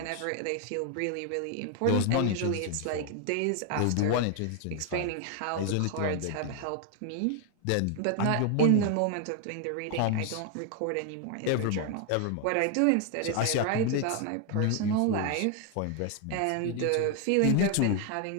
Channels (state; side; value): different; both; correlation 0.00